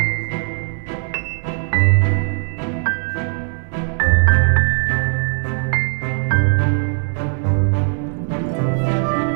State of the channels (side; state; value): left; silent; digital silence